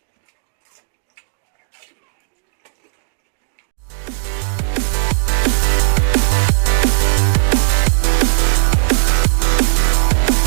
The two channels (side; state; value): left; silent; digital silence